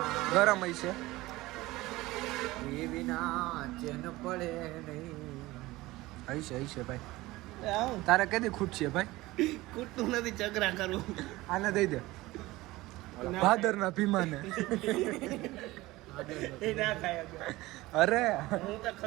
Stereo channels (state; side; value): quieter; left; 19.1 dB